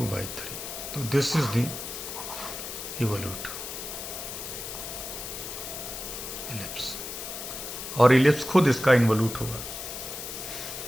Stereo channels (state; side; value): noise; left; hiss, 7 dB below the sound